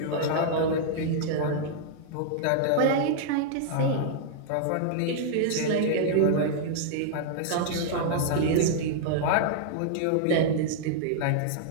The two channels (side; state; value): both; different; correlation -0.01